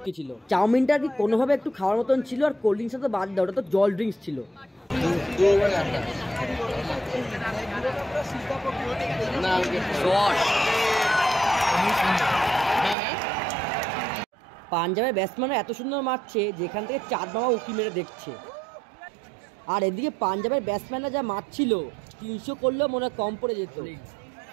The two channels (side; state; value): left; drops out; at 13.0 s